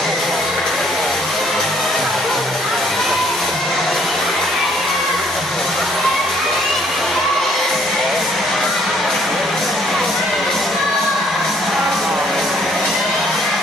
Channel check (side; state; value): both; normal; correlation 0.64